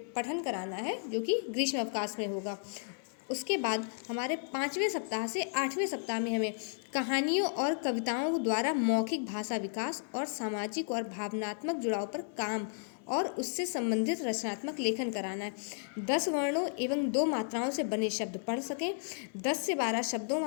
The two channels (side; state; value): right; silent; 55 dB below the other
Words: कराना है, जो कि ग्रीष्म अवकाश में होगा। उसके बाद हमारे 5वें सप्ताह से 8वें सप्ताह में हमें कहानियों और कविताओं द्वारा मौखिक भाषा विकास और सामाजिक और भावनात्मक जुड़ाव पर काम और उससे संबंधित रचनात्मक लेखन कराना है। 10 वर्णों एवं 2 मात्राओं से बने शब्द पढ़ सकें, 10 से 12 शब्दों